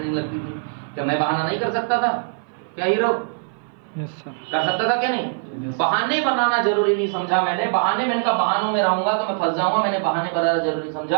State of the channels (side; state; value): left; silent; 56 dB below the other